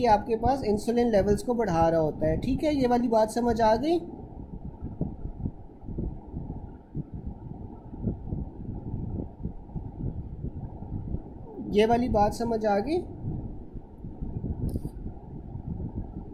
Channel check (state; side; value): identical; both; correlation 1.00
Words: आपके पास इंसुलिन लेवल्स को बढ़ा रहा होता है। ठीक है, ये वाली बात समझ आ गई। ये वाली बात समझ आ गई।